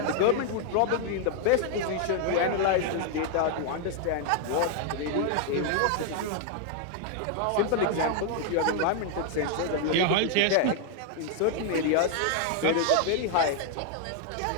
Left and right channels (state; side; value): different; both; correlation 0.00